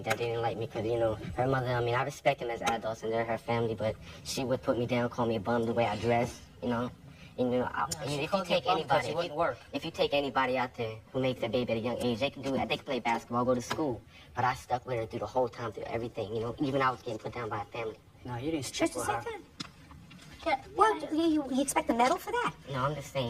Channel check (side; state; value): both; identical; correlation 1.00